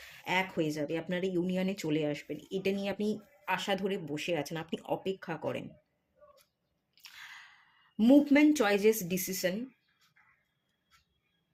এক হয়ে যাবে, আপনারা ইউনিয়নে চলে আসবেন। এটা নিয়ে আপনি আশা ধরে বসে আছেন, আপনি অপেক্ষা করেন। Movement, choices, decision.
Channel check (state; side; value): identical; both; correlation 1.00